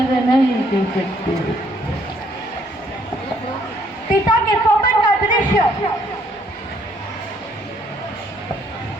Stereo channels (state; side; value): normal; both; correlation 0.67